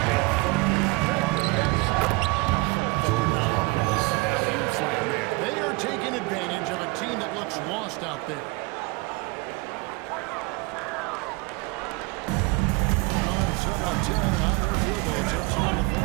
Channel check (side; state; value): left; quieter; 25.3 dB